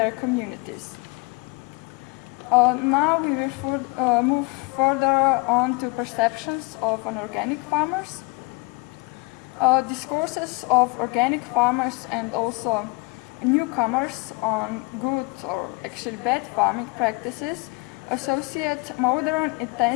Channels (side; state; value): right; quieter; 27.5 dB